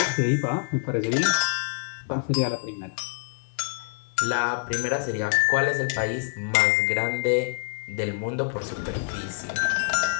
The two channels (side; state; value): right; silent; digital silence